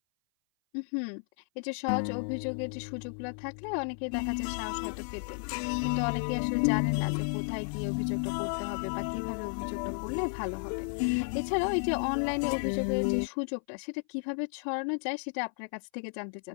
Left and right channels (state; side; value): silent; right; 56 dB below the other